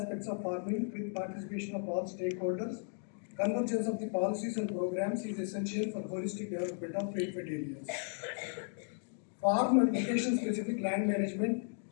of farming with participation of all stakeholders. Convergence of the policies and programs is essential for holistic development of rainfed areas. Farm and location-specific land management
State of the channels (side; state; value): right; silent; 54 dB below the other